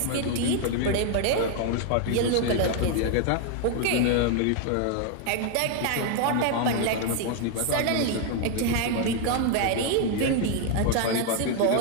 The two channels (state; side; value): different; both; correlation 0.00